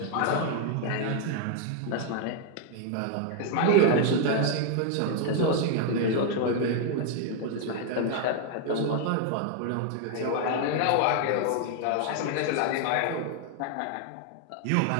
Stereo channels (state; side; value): different; both; correlation 0.00